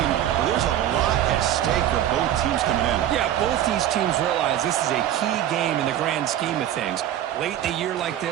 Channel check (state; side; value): quieter; left; 11.6 dB